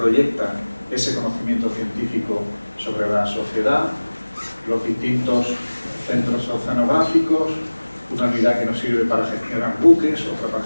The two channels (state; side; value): inverted; both; correlation -1.00